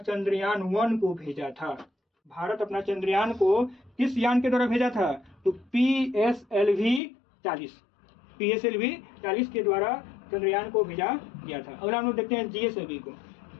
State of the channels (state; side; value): drops out; right; at 7.0 s